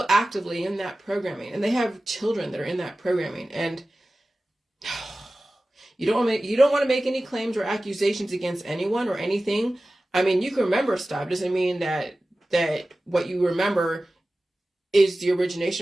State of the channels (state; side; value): normal; both; correlation 0.96